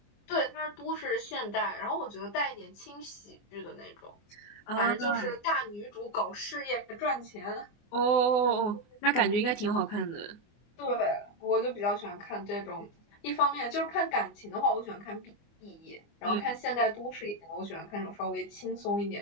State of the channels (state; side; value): late; right; 24 ms